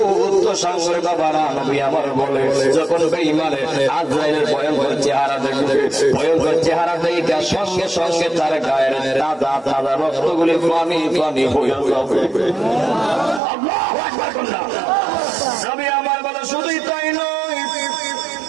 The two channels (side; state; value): left; drops out; at 13.4 s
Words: তো সাঙ্গের বাবারা, নবী আমার বলে যখন বেঈমানে আজরাইলের ভয়ঙ্কর চেহারা দেখবে, ভয়ঙ্কর চেহারা দেখে সঙ্গে সঙ্গে তার গায়ের তাজা তাজা রক্তগুলি পানি পানি হয়ে যাবে। আল্লাহু আকবার কন্যা। নবী আমার বলে শুধুই তাই নয়,